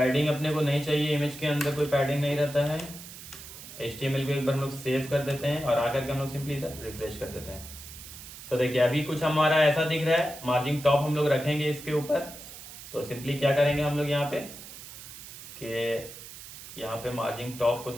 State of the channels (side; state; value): right; noise; hiss, 14 dB below the sound